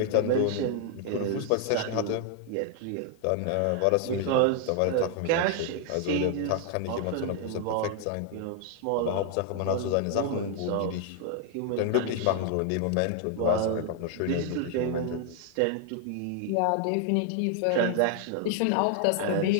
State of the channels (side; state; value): both; different; correlation 0.00